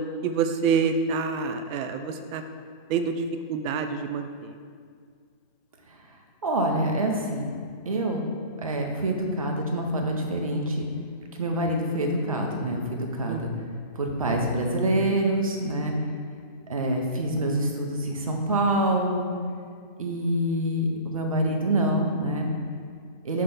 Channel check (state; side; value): inverted; both; correlation -0.32